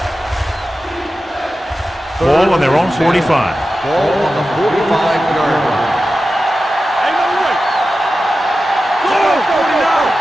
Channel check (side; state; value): both; normal; correlation 0.93